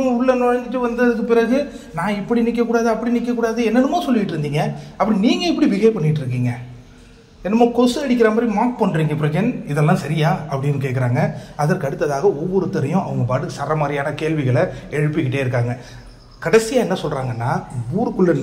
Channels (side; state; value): both; identical; correlation 1.00